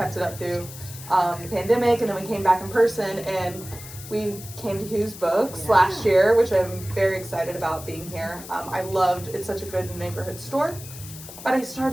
it up through the pandemic, and then we came back in person, and we came to Whose Books last year, which I'm very excited about being here. I loved, it's such a good neighborhood store. But I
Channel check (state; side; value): noise; left; hiss, 14 dB below the sound